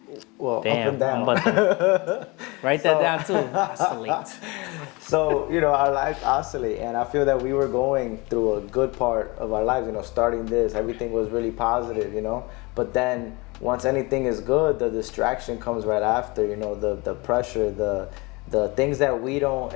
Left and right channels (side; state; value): right; quieter; 25.9 dB